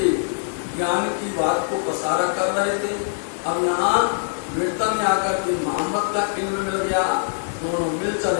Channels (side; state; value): right; silent; digital silence